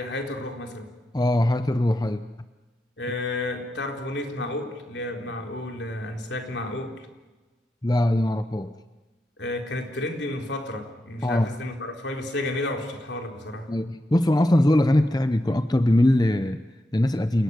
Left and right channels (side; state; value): both; normal; correlation 0.86